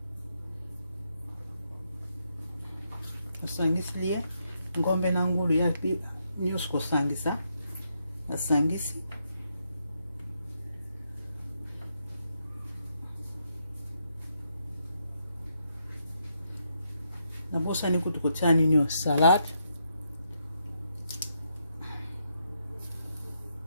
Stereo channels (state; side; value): inverted; both; correlation -0.79